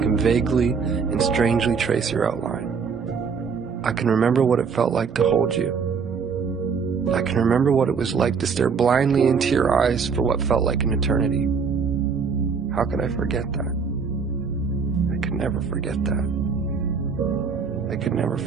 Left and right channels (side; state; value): left; quieter; 5.8 dB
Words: vaguely and strangely trace your outline. I can remember what it felt like to hold you. I can remember what it was like to stare blindly into your eyes for what felt like an eternity. How could I forget that? I could never forget that. I could never